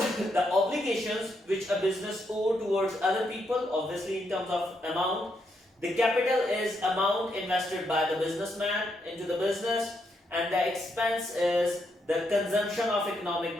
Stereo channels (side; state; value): both; normal; correlation 0.79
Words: obligations which a business owes towards other people, obviously in terms of amount. The capital is amount invested by the businessman into the business, and the expense is the consumption of economic